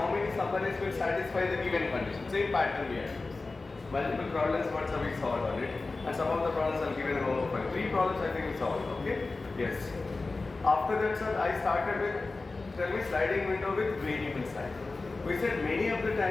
many subarrays will satisfy the given condition. Same pattern we have. Multiple problems what we solved on it, and some of the problems are given in homework. 3 problems I think we solved. Okay. Yes. After that, sir, I started with sliding window with variable size. We said many of the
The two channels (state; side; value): quieter; right; 3.6 dB